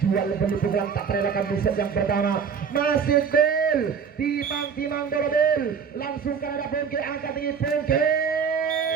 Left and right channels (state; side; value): quieter; left; 6.6 dB